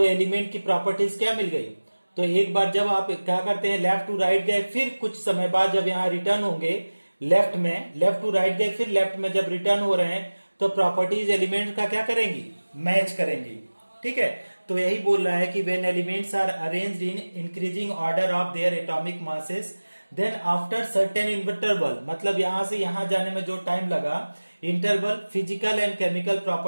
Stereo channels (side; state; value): both; inverted; correlation -1.00